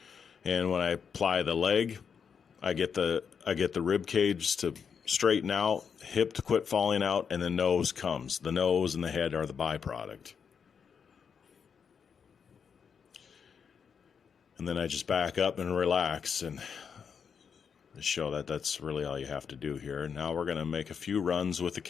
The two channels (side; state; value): right; quieter; 6.7 dB